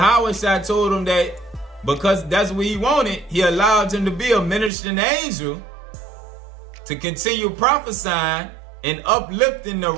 told him that because that's what he wanted, he allowed him to be a ministering angel to continue prophesying and uplifting the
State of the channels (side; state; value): left; drops out; at 4.7 s